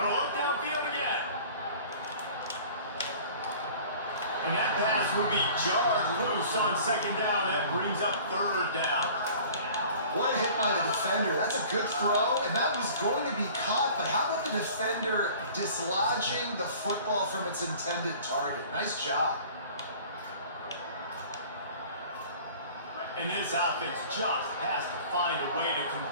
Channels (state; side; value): inverted; both; correlation -0.46